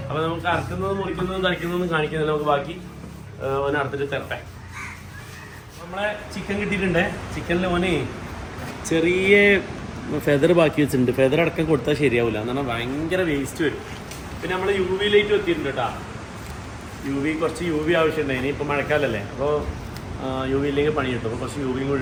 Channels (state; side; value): identical; both; correlation 1.00